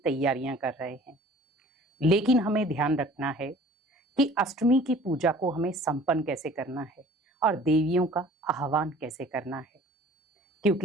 कर रहे हैं। लेकिन हमें ध्यान रखना है कि अष्टमी की पूजा को हमें संपन्न कैसे करना है और देवियों का आह्वान कैसे करना है।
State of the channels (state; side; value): normal; both; correlation 0.49